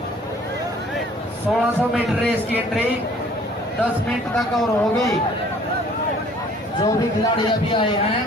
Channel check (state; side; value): normal; both; correlation 0.54